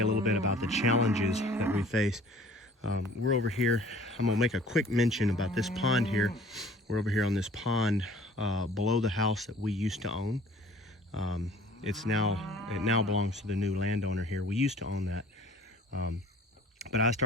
a little bit about the challenges that we face. We're over here. I'm gonna make a quick mention about this pond here. We're over here on this pond below the house that we used to own. It now belongs to the new landowner here. We used to own that. But I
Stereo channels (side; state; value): both; normal; correlation 0.50